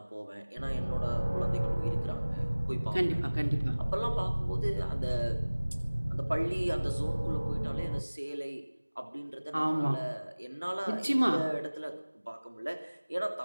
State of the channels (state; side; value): inverted; both; correlation -1.00